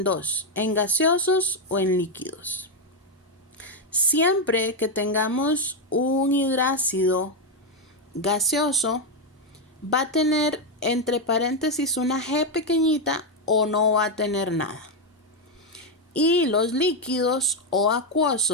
dos, en gaseosos o en líquidos. Siempre que tengamos un hidrácido gaseoso, va a tener entre paréntesis una G pequeñita o no va a tener nada. Y los líquidos o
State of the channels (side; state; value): both; normal; correlation 0.04